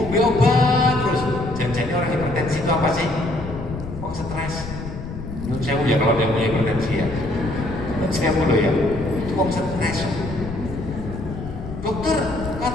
terus. Jangan-jangan orang hipertensi itu apa sih? Oh, stres. Menurut saya ya kalau dia punya hipertensi ya. Saya mulu ya, itu wong stres. Dokter,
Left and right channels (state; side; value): noise; left; rumble, 9 dB below the sound